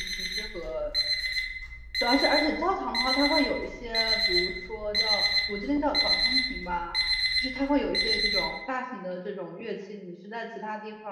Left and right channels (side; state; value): both; identical; correlation 1.00